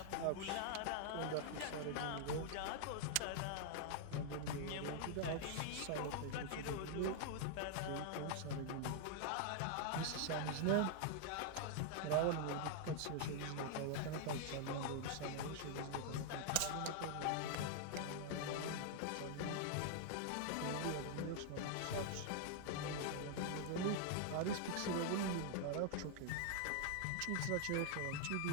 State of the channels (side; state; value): both; different; correlation 0.00